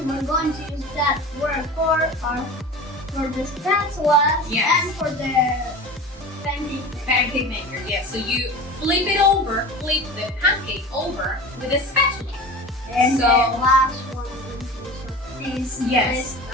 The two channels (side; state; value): both; normal; correlation 0.34